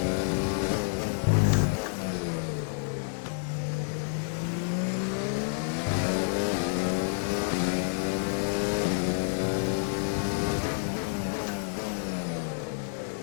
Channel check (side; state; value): right; silent; digital silence